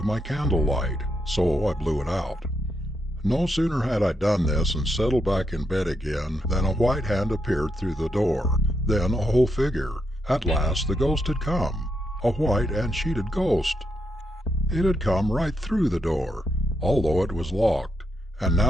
my candlelight, so I blew it out. No sooner had I done this and settled back in bed again than a white hand appeared through the door, then a whole figure. At last the ghost had come, a white and sheeted ghost. It had come right through the door, although it was locked, and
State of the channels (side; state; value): both; normal; correlation 0.80